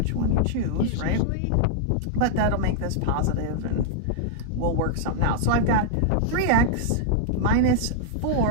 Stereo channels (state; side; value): different; both; correlation -0.01